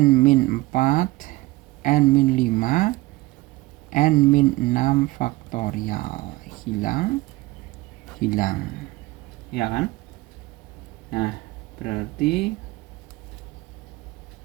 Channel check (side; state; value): left; quieter; 19.9 dB